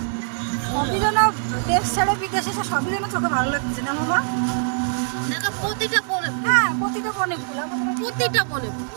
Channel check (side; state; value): left; silent; digital silence